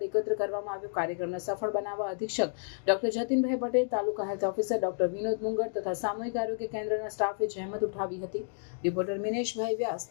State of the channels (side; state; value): right; silent; digital silence